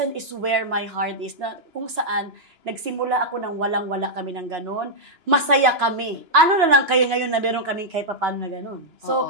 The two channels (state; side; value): late; left; 2.9 ms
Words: is where my heart is. Na, kung saan, nagsimula ako nang walang-wala kami ng ganon. Masaya kami. Ano na lang kayo ngayon na meron kaming kahit paano na ganon. So,